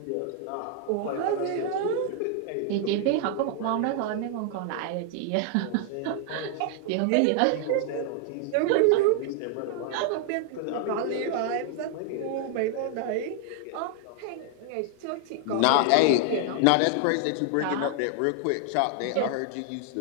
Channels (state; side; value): different; both; correlation 0.00